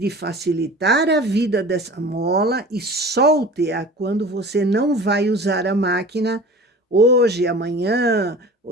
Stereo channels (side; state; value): both; normal; correlation 0.40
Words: facilitar a vida dessa mola e solte-a quando você não vai usar a máquina hoje, amanhã,